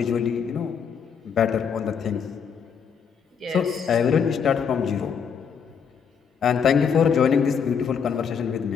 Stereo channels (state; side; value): quieter; right; 6.9 dB